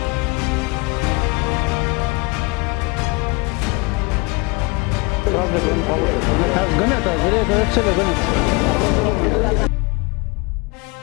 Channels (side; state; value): right; quieter; 27.1 dB